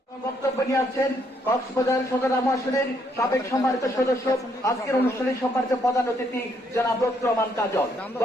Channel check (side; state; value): both; normal; correlation 0.72